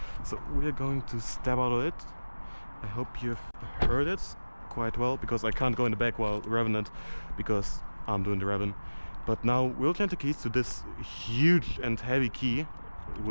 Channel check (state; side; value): inverted; both; correlation -1.00